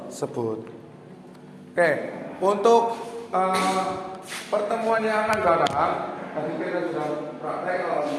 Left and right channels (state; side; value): identical; both; correlation 1.00